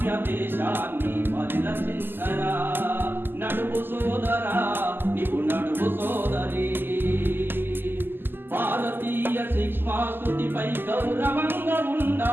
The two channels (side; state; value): left; late; 0.096 ms